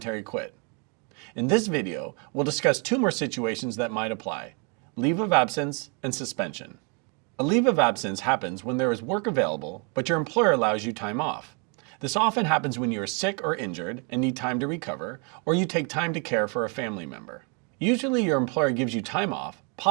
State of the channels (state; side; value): quieter; left; 35.7 dB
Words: quit. In this video, we'll discuss two more situations that might apply: leave of absence and suspension. A leave of absence happens when there is work available, but your employer allows you time off. This often happens when you are sick or injured and need time to recover, or you take time to care for a family member. Usually your employer gives you time off,